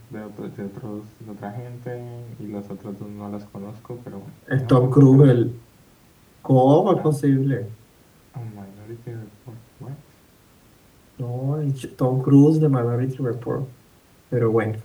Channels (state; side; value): identical; both; correlation 1.00